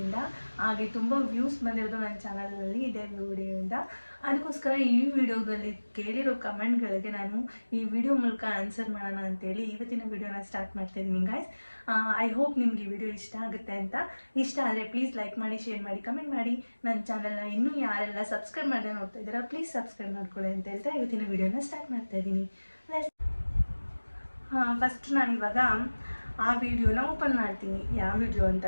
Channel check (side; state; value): both; inverted; correlation -1.00